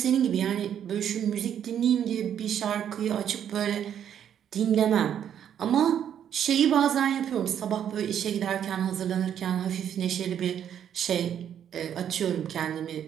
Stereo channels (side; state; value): left; quieter; 9.3 dB